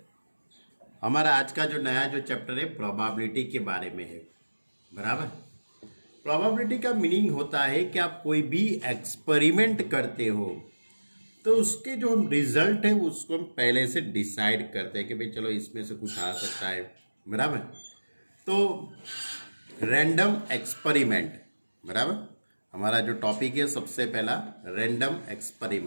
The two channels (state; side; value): inverted; both; correlation -1.00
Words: हमारा आज का जो नया जो चैप्टर है प्रोबेबिलिटी के बारे में है। बराबर। प्रोबेबिलिटी का मीनिंग होता है कि आप कोई भी एक्सपेरिमेंट करते हो तो उसके जो हम रिजल्ट है उसको हम पहले से डिसाइड करते हैं कि भाई चलो इसमें से कुछ आ सकता है। बराबर। तो रैंडम एक्सपेरिमेंट, बराबर, हमारा जो टॉपिक है सबसे पहला रैंडम